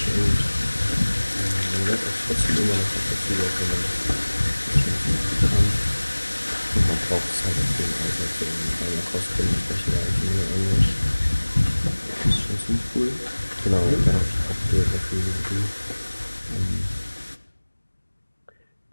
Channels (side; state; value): both; inverted; correlation -1.00